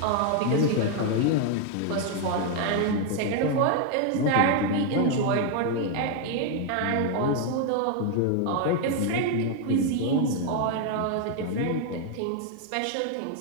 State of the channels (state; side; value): different; both; correlation 0.01